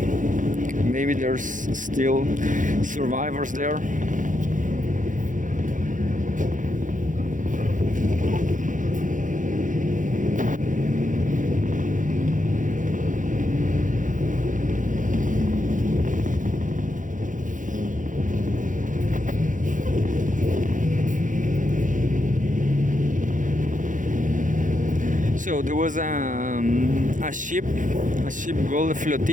there's still survivors there. So there was a ship called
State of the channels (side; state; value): left; late; 0.38 ms